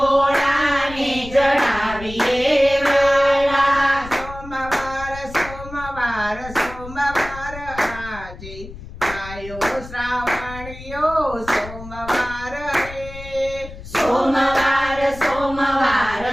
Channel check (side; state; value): left; noise; rumble, 14 dB below the sound